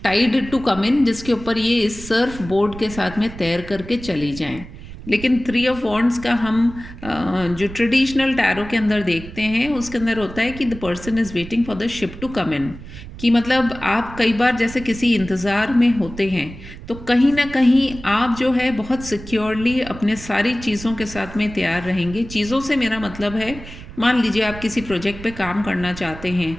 tide to come in, जिसके ऊपर ये इस सर्फ बोर्ड के साथ में तैर करके चली जाएं। लेकिन 3 ऑफ वॉन्ड्स का हम जो ट्रेडिशनल टैरो के अंदर देखते हैं उसके अंदर होता है कि the person is waiting for the ship to come in. कि मतलब आप कई बार जैसे किसी इंतज़ार में होते हैं तो कहीं ना कहीं आप जो है बहुत सिक्योरली अपने सारी चीज़ों के साथ में तैयार रहेंगे। चीज़ों से मेरा मतलब है, मान लीजिए आप किसी प्रोजेक्ट पे काम करना चाहते हैं,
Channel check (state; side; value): noise; right; rumble, 14 dB below the sound